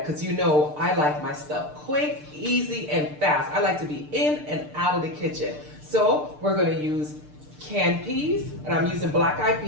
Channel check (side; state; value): left; late; 6.7 ms